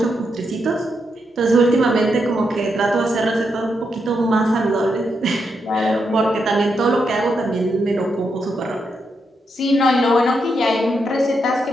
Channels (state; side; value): normal; both; correlation 0.82